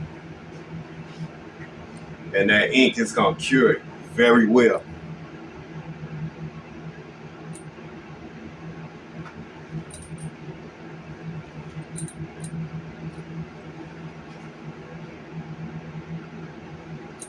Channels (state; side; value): identical; both; correlation 1.00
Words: And that ink is gonna cure it very well.